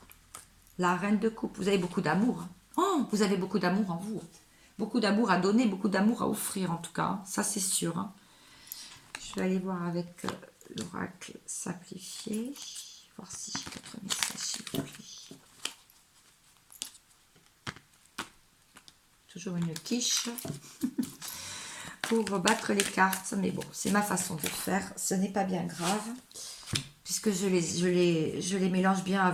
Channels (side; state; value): both; identical; correlation 1.00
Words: La reine de coupe. Vous avez beaucoup d'amour. Oh, vous avez beaucoup d'amour en vous. Beaucoup d'amour à donner, beaucoup d'amour à offrir en tout cas. Ça c'est sûr, hein. Je vais aller voir avec l'oracle simplifié. Voir si j'ai d'autres messages s'il vous plaît. Toujours une quiche pour battre les cartes. Mais bon, c'est ma façon de faire. Ce n'est pas bien grave. Puisque je les mélange bien